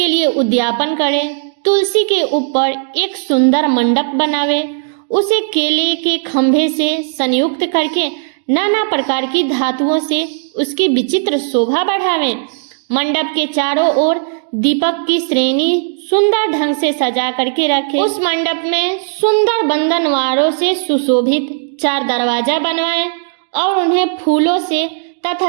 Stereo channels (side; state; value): left; silent; digital silence